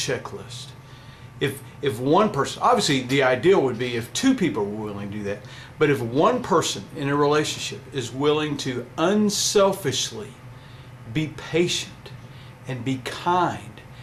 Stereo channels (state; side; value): identical; both; correlation 1.00